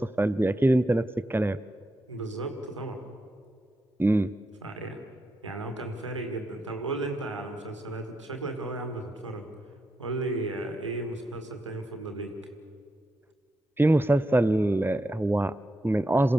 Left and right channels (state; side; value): normal; both; correlation 0.85